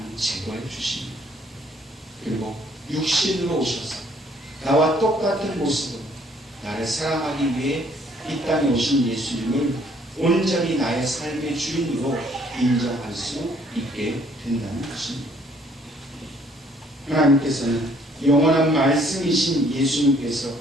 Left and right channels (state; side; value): normal; both; correlation 0.63